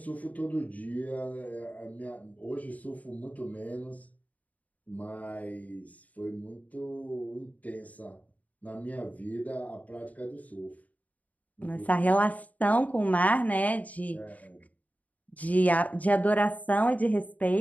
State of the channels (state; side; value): late; right; 0.073 ms